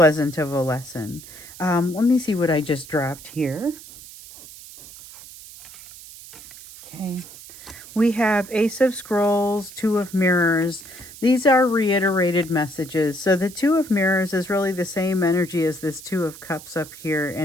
of a lesson. Let me see what I just dropped here. Okay. We have Ace of Scrolls, Two of Mirrors. These are reiterated messages. So the Two of Mirrors is really the same energy as this Two of Cups up here.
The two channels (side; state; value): right; noise; hiss, 17 dB below the sound